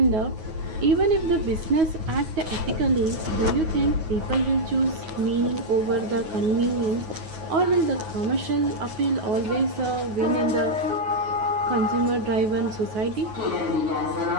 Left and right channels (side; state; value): left; late; 9.4 ms